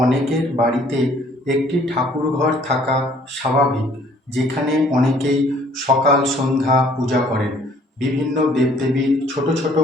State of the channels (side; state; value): both; normal; correlation 0.59